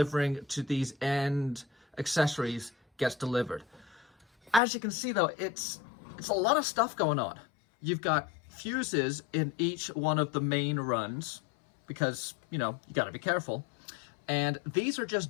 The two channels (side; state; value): right; drops out; at 4.6 s